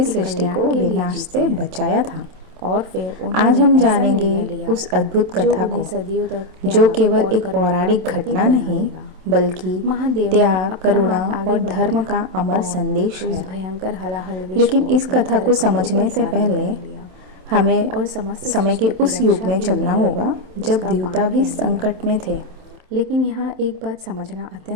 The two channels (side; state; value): left; late; 27 ms